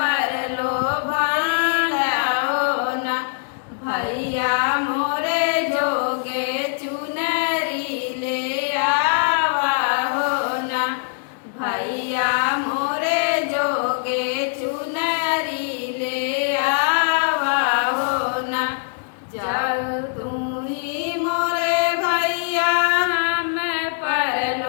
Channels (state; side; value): silent; right; digital silence